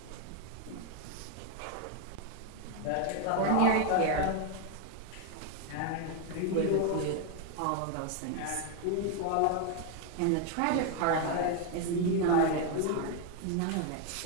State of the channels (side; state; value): both; different; correlation 0.01